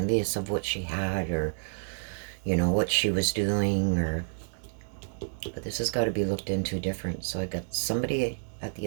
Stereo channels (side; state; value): left; silent; 58 dB below the other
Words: of what she had, or, you know, what she was doing, or, but this has got to be looked into different. So I got somebody at the